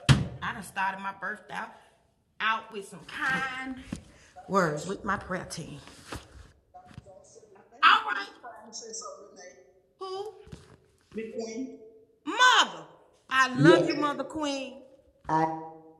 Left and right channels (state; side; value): identical; both; correlation 1.00